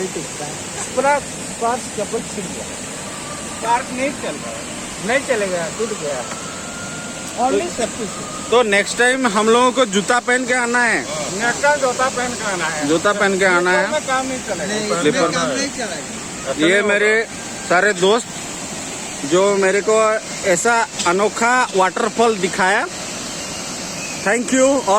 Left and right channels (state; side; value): identical; both; correlation 1.00